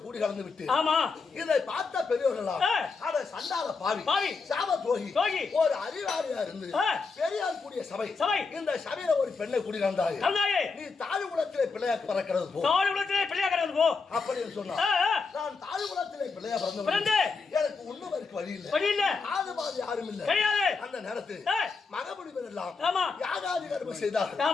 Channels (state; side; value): quieter; right; 4.6 dB